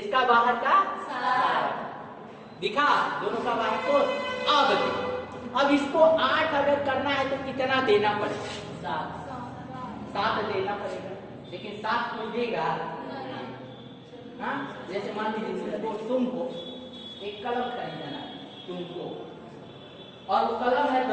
बाहर का 7 दिखा, दोनों का बाह्य कोश। अब इसको 8 अगर करना है तो कितना देना पड़ेगा? 7 देना पड़ेगा, लेकिन 7 कोई देगा? हाँ, जैसे मान लीजिए तुमको एक कलम खरीदना तुमको, और वो कलम है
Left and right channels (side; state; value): both; identical; correlation 1.00